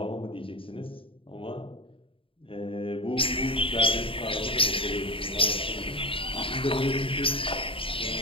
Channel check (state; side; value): late; right; 0.26 ms